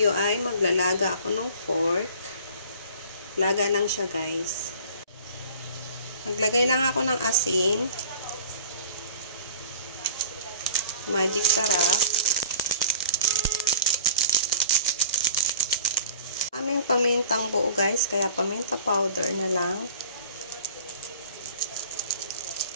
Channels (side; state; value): both; inverted; correlation -0.46